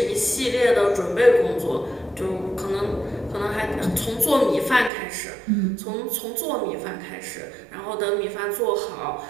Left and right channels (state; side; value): drops out; left; at 4.9 s